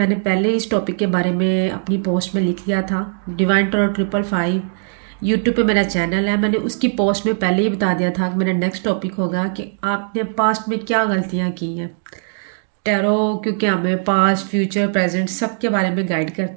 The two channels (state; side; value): silent; left; digital silence